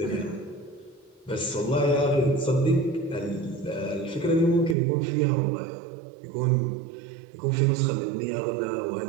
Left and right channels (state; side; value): drops out; left; at 4.8 s